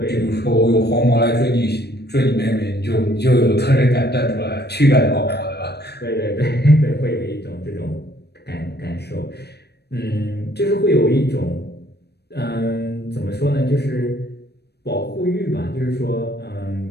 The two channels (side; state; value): right; late; 0.48 ms